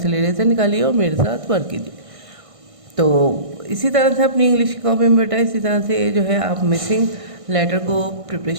इरेजर निकालिए और मेरे साथ वर्क कीजिए। तो इसी तरह से अपनी इंग्लिश की कॉपी में बेटा इसी तरह से जो है आप मिसिंग लेटर को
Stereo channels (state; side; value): late; left; 1.6 ms